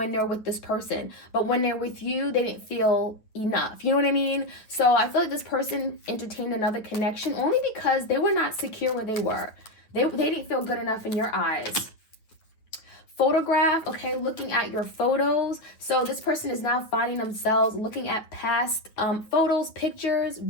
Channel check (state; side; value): late; right; 9.3 ms